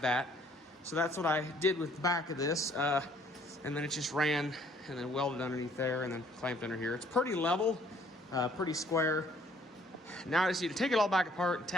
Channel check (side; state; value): both; normal; correlation 0.61